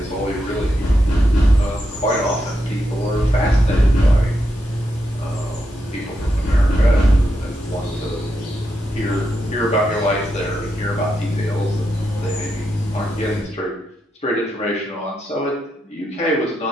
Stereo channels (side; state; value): both; normal; correlation 0.84